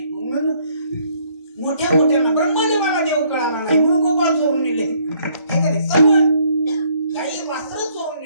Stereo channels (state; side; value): inverted; both; correlation -0.66